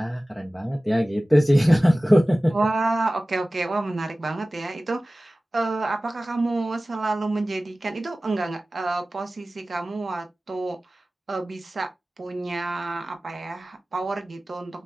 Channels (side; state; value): both; normal; correlation 0.97